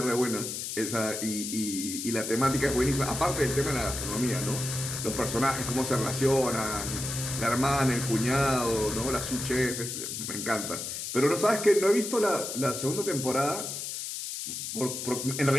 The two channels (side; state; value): left; noise; hiss, 5 dB below the sound